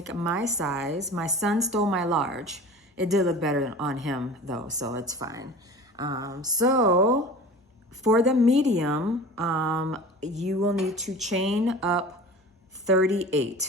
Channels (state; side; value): normal; both; correlation 0.38